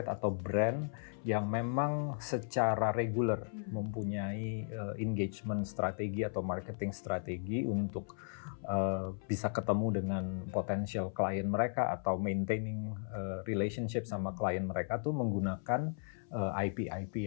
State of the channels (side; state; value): right; silent; 54 dB below the other